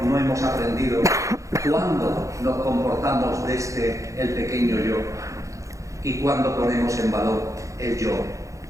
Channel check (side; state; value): left; late; 0.15 ms